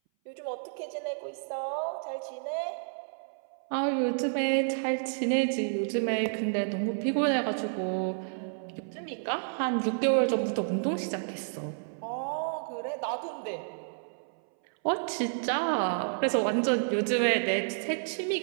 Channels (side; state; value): left; silent; 58 dB below the other